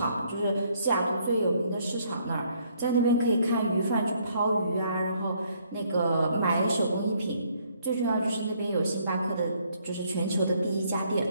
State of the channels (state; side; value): inverted; both; correlation -0.67